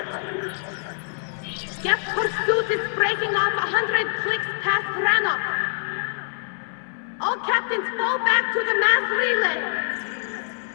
Geth pursuit is breaking off 100 clicks past Rannoch. All captains fall back to the mass relay.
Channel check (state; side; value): silent; right; 61 dB below the other